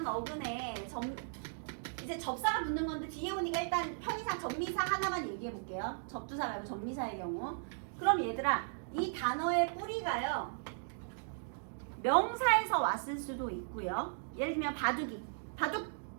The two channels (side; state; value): left; silent; digital silence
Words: 어근에 이제 접사가 붙는 건데 뒤에 오니까 일단 편의상 전미사 하나만 얘기해 볼게요. 접두사 말고 전미사의 경우. 그럼 얘들아 이 단어의 뿌리가요. 명사에서 왔을 수도 있고요. 예를 들면 바둑이. 바둑